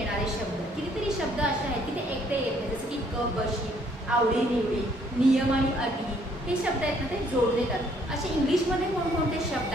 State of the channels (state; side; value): normal; both; correlation 0.64